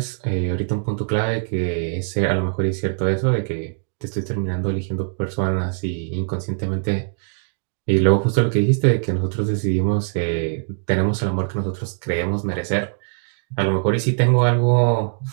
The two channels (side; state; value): left; silent; digital silence